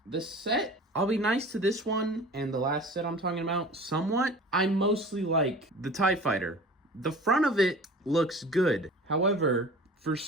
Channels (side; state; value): both; normal; correlation 0.41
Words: the set, I'll be nice to this one and the last set I'm talking about somewhat. I mostly like the TIE Fighter. The front of it looks good. However, for